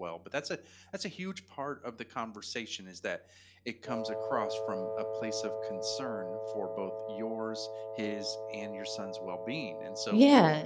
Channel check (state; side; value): identical; both; correlation 1.00